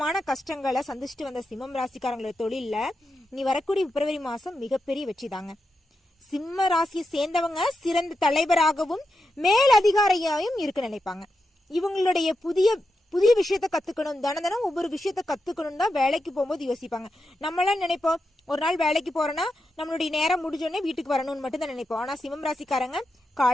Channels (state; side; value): normal; both; correlation 0.87